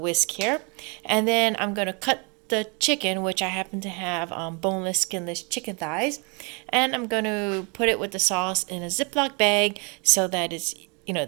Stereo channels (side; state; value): left; quieter; 33.1 dB